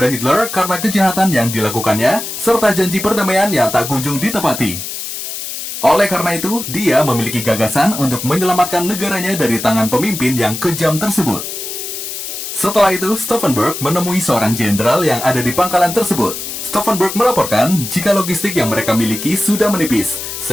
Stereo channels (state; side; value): noise; left; hiss, 7 dB below the sound